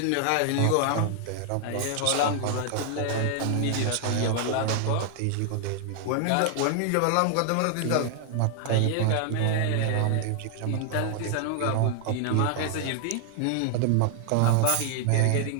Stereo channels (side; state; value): both; different; correlation 0.00